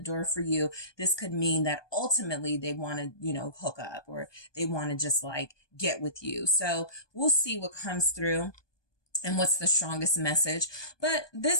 for you. This could mean that ultimately they want to, hook up, or they want to just like get with you. So we'll see what comes through and what's the strongest message. But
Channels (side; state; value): right; late; 1.2 ms